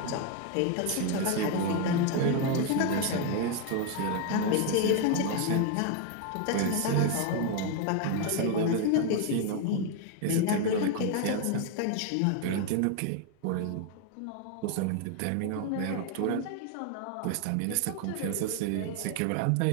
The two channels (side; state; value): both; different; correlation 0.01